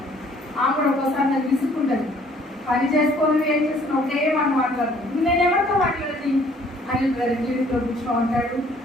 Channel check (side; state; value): both; normal; correlation 0.59